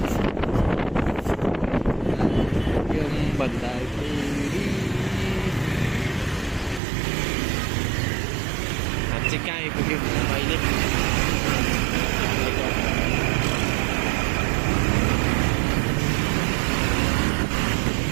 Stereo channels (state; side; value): drops out; left; at 6.8 s